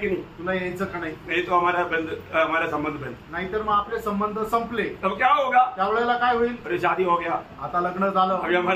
नहीं? तुला यायचं का नाही? नहीं तो हमारा संबंध बंद। नाहीतर मग आपले संबंध संपले। तब क्या होगा? त्यावेळेला काय होईल? अरे शादी हो गया, आता लग्न झालं, अभी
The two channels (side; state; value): both; identical; correlation 1.00